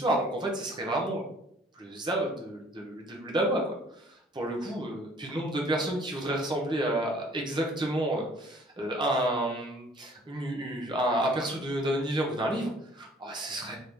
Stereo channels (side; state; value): both; normal; correlation 0.56